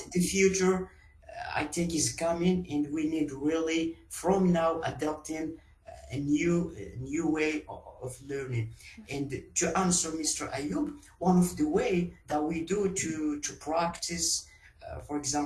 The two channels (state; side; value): identical; both; correlation 1.00